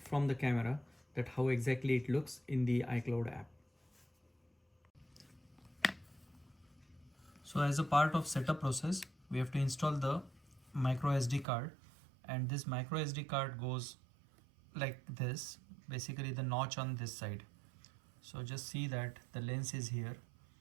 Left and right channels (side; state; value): left; drops out; at 11.5 s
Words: the camera, that how exactly it looks in the iCloud app. So as a part of setup process, we have to install the micro SD card, and this micro SD card goes like this, basically the notch on this side. So just see that the lens is here